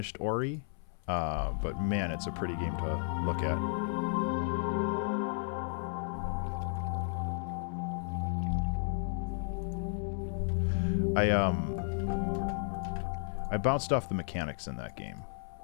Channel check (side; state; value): right; silent; 55 dB below the other